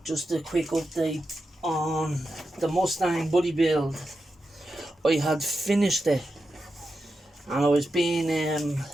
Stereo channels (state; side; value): normal; both; correlation 0.89